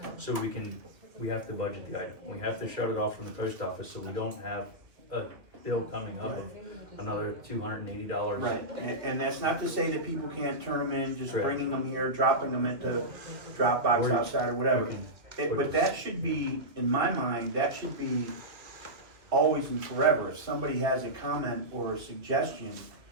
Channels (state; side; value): late; left; 2.2 ms